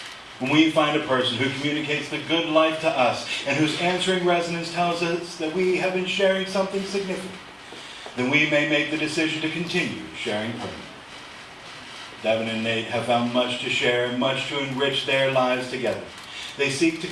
When we find a person who communicates the good life to us and whose answering resonance tells us that we have been sharing something significant, then we may make the decision to continue sharing permanently. Devon and Nate have found much to share and much to enrich their lives together. They seek to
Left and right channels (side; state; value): both; identical; correlation 1.00